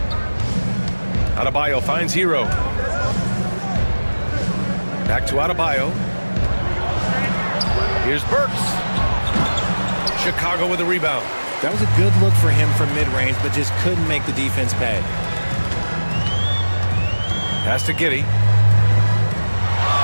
Adebayo finds Hero. Back to Adebayo. Here's Burks. Chicago with a rebound. That was a good look for him from mid-range, but just couldn't make the defense pay. Pass to Giddey.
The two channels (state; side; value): inverted; both; correlation -1.00